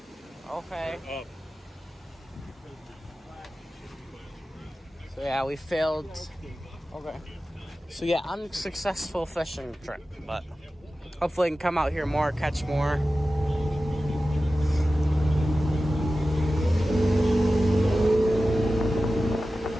Okay. Up. So yeah, we failed. Okay. So yeah, unsuccessful fishing trip, but hopefully I can come out here more, catch more.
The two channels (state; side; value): normal; both; correlation 0.94